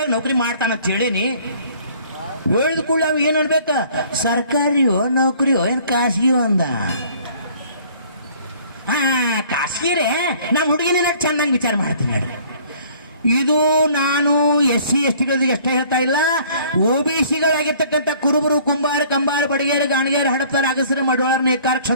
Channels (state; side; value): inverted; both; correlation -0.55